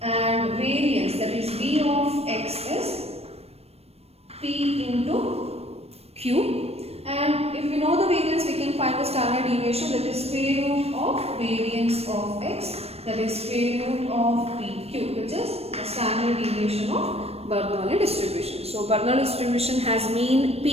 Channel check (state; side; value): late; left; 0.29 ms